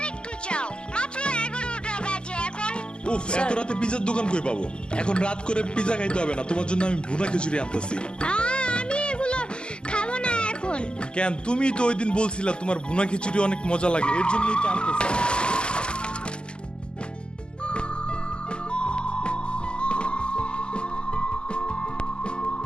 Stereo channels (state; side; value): late; right; 0.049 ms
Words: যাও, মাত্র 11টা বাজে এখন। উফ, এত রাতে পিজার দোকান কই পাবো? এখন রাত করে পিজা খাইতে হবে না, তোমার জন্য আমি ভুনা খিচুড়ি আনতেছি। আমি এগুলো খাবো না এখন। কেন? তুমি তো ওই দিন বলছিলা তোমার ভুনা খিচুড়ি অনেক মজা লাগে, এর জন্যই তো আনতেছি।